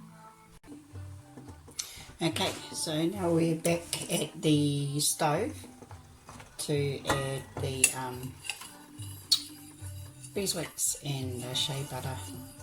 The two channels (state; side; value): identical; both; correlation 1.00